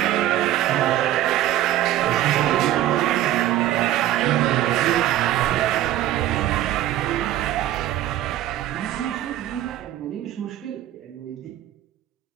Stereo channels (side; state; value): left; quieter; 13.2 dB